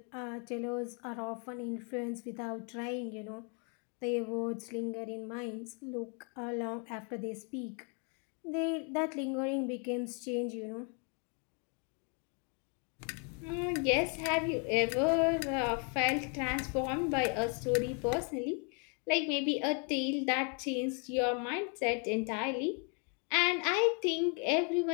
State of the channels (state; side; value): quieter; right; 37.7 dB